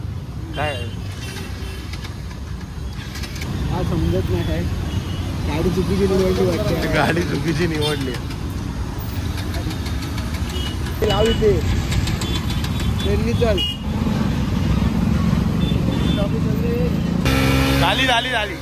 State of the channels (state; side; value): identical; both; correlation 1.00